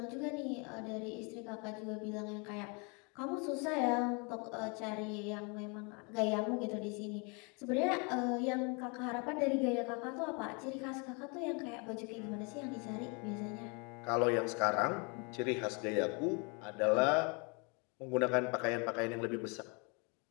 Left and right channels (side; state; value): right; quieter; 32.7 dB